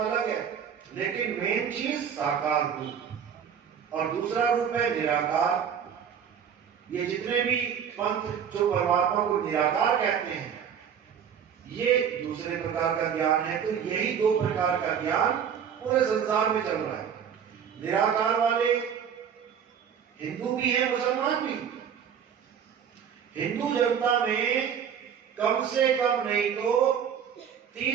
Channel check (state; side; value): quieter; left; 7.9 dB